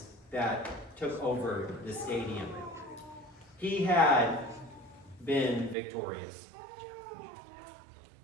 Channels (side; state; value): left; drops out; at 5.8 s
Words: that took over the stadium. He had been victorious.